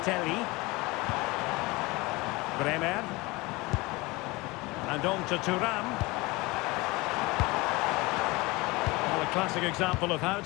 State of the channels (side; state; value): right; quieter; 23.1 dB